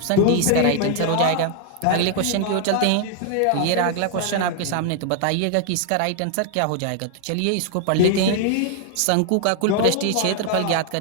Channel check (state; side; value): different; both; correlation 0.00